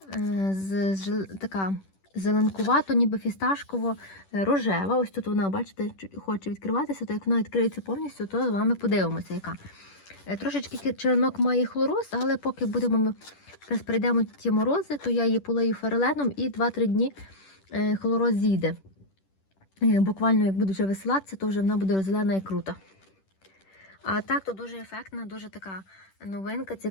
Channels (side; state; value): right; late; 10 ms